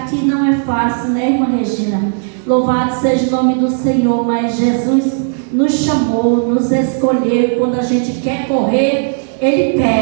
aqui não é fácil, né, irmã Regina? Louvado seja o nome do Senhor, mas Jesus nos chamou, nos escolheu. Quando a gente quer correr, Ele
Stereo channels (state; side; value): silent; left; 70 dB below the other